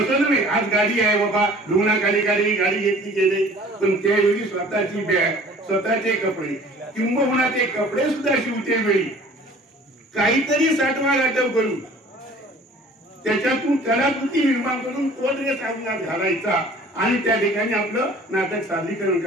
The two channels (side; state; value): both; normal; correlation 0.49